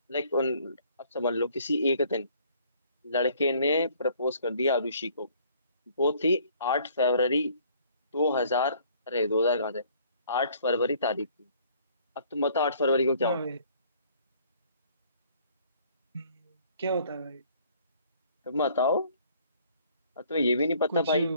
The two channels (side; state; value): both; inverted; correlation -0.59